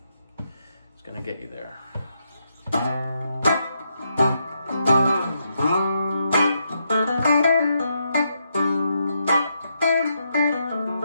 is going to get you there.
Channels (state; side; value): inverted; both; correlation -0.81